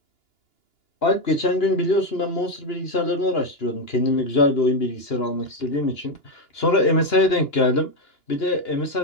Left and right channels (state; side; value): late; right; 2.9 ms